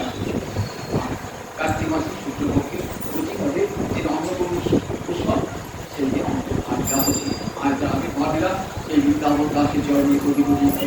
কার্তিক মাসের শুক্লপক্ষের প্রতিপদে যে অন্নপূর্ণ উৎসব, সেই দিন আজ আমি ভাবিরা এই বৃন্দাবন দাসের চরণে কোটি কোটি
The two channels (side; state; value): both; identical; correlation 1.00